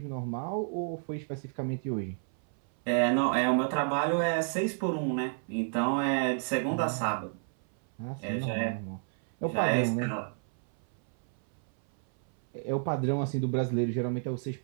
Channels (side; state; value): left; silent; 57 dB below the other